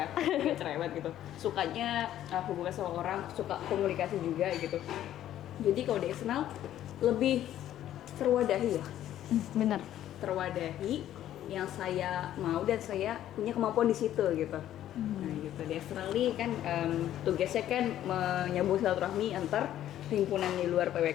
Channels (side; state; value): right; quieter; 12.1 dB